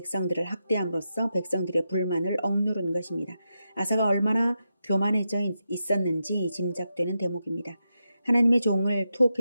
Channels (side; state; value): both; inverted; correlation -0.87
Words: 학대함으로써 백성들의 불만을 억누른 것입니다. 아사가 얼마나 교만해져 있었는지 짐작되는 대목입니다. 하나님의 종을